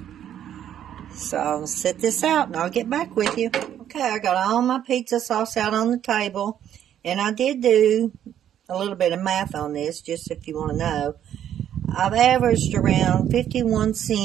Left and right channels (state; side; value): quieter; left; 10.3 dB